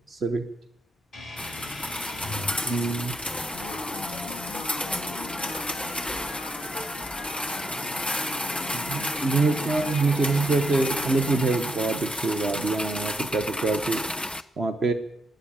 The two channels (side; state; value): both; normal; correlation 0.79